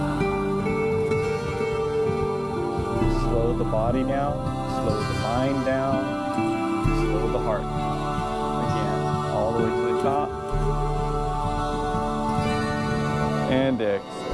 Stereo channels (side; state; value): both; identical; correlation 1.00